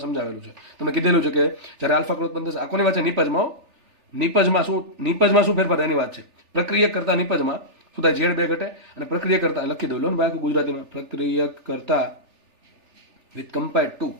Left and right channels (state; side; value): late; left; 3.4 ms